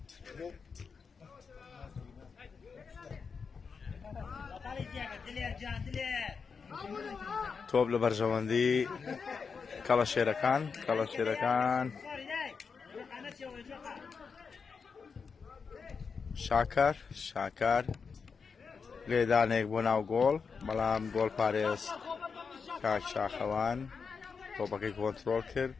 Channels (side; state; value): right; quieter; 5.5 dB